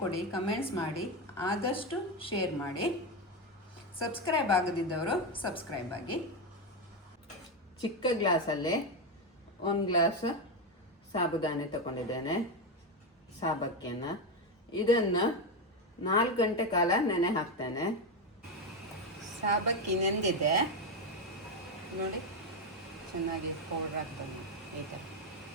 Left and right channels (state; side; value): normal; both; correlation 0.10